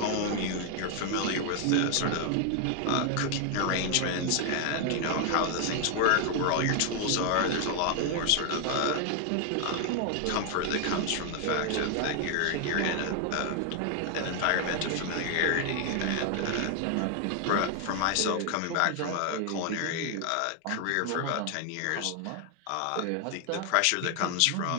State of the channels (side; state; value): both; different; correlation 0.00